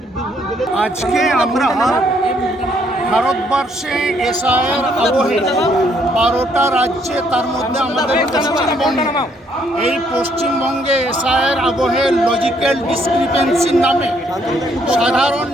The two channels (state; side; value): normal; both; correlation 0.69